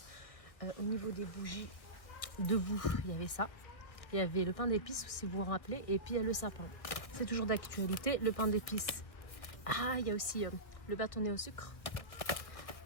Au niveau des bougies, debout, il y avait ça. Il y avait le pain d'épices, si vous vous rappelez, et puis il y a le sapin. C'est toujours d'actualité, le pain d'épices. Ah, il y a aussi le bâtonnet au sucre.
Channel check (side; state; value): right; late; 1.3 ms